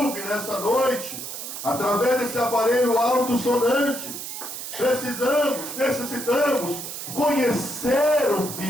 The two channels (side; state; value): right; noise; hiss, 8 dB below the sound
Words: nessa noite, através desse aparelho alto-sonante, necessitamos conhecer o